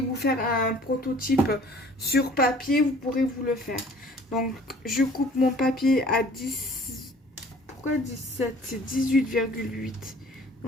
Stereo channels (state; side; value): normal; both; correlation 0.52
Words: faire un prototype sur papier, vous pourrez vous le faire. Donc, je coupe mon papier à 10. Pourquoi 17? C'est 18,8.